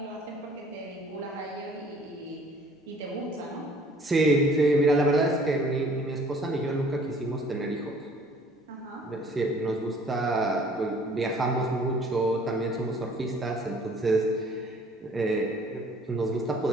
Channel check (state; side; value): normal; both; correlation 0.55